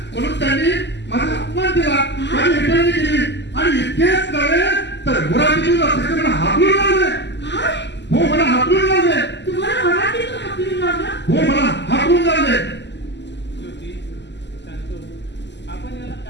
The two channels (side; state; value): right; late; 0.51 ms